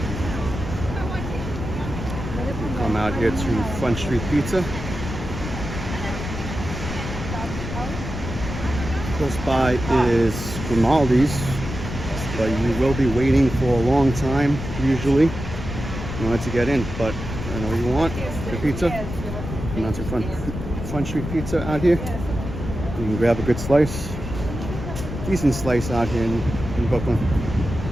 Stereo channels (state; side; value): noise; left; rumble, 7 dB below the sound